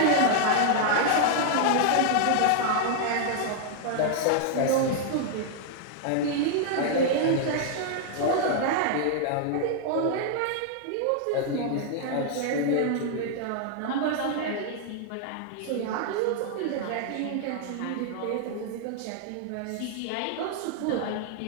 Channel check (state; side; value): different; both; correlation 0.00